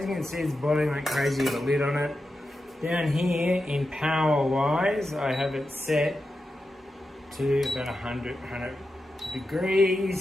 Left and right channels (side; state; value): both; normal; correlation 0.90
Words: you can see, it's boiling like crazy with a lid on it. Down here in power wise, I have it set to about 100